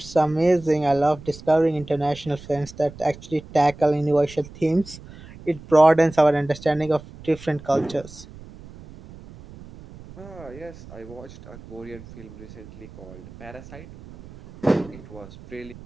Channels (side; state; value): right; noise; rumble, 18 dB below the sound